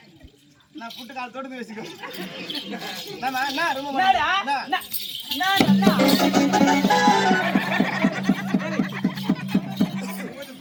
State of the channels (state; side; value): identical; both; correlation 1.00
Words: நான் புட்டு கால் தொடுத்து வச்சுக்கோ.